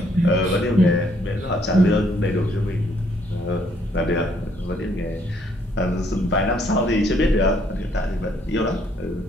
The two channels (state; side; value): normal; both; correlation 0.68